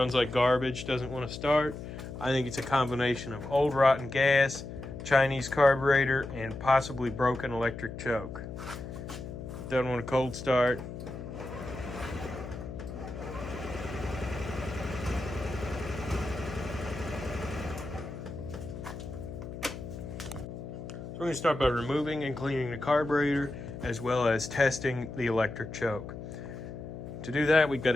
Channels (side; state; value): left; noise; hum, 9 dB below the sound